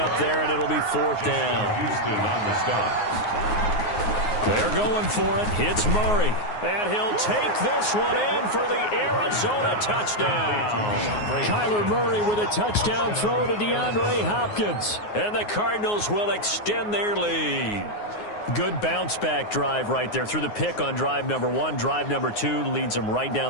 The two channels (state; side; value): late; right; 9.5 ms